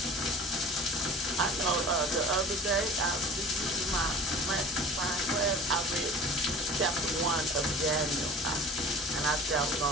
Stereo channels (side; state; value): both; normal; correlation 0.41